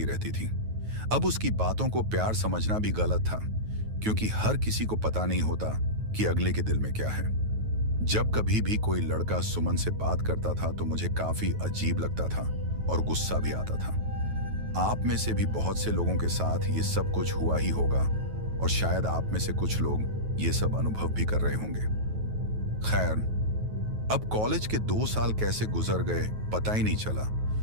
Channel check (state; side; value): late; left; 9.3 ms